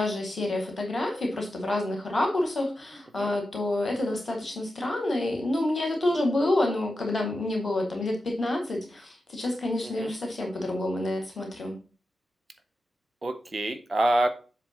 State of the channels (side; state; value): both; normal; correlation 0.90